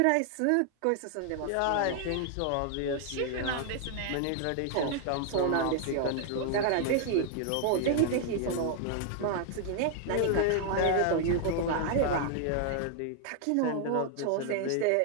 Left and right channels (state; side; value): different; both; correlation 0.00